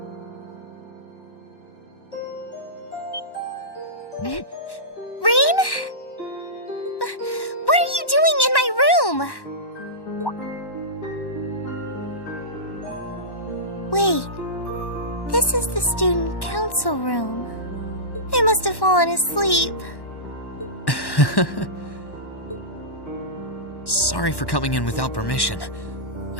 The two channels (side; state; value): right; late; 1.1 ms